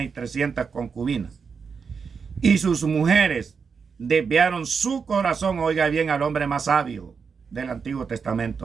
y 300 concubinas. y sus mujeres desviaron su corazón, oiga bien, al hombre más sabio del Antiguo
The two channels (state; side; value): quieter; left; 5.7 dB